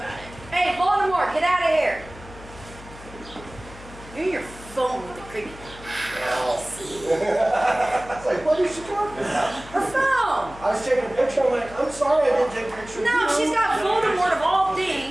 it. hey, Baltimore, get out of here. You're in your phone with the creepy. I was like, what is she talking about? Her phone. I was taking a picture. I'm like, I'm sorry I didn't take a picture. No, she's got Voldemort of all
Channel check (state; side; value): noise; left; hum, 18 dB below the sound